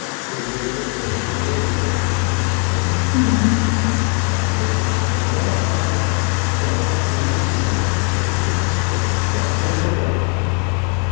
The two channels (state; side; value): quieter; right; 37.8 dB